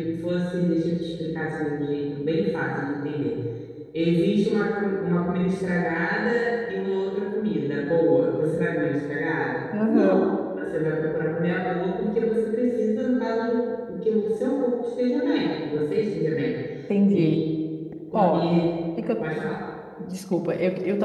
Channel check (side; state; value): both; identical; correlation 1.00